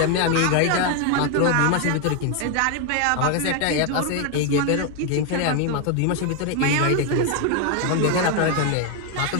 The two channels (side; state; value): both; different; correlation 0.01